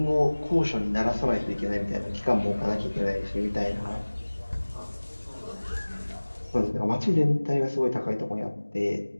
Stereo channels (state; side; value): inverted; both; correlation -1.00